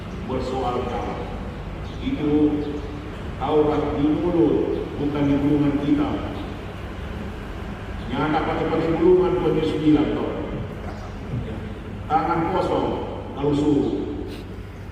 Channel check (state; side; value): identical; both; correlation 1.00